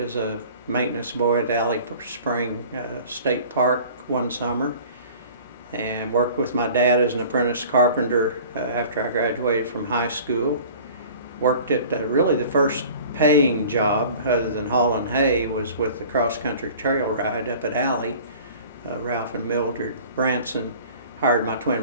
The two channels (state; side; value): inverted; both; correlation -0.45